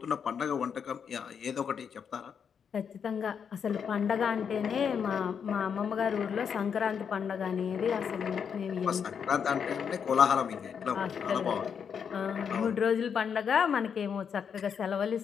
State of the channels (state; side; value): quieter; right; 7.1 dB